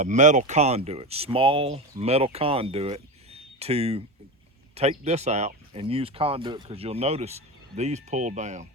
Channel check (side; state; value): both; normal; correlation 0.21